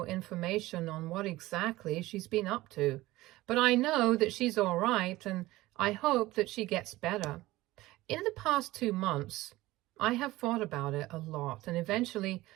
information on what exactly she's been up to. But I know that she's all right, and I hope that she gets better. In the past 2 months, I have thought about it a lot, and eventually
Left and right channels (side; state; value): left; quieter; 18.1 dB